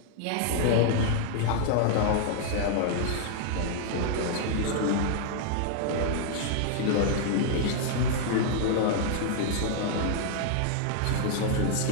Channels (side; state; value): both; different; correlation 0.00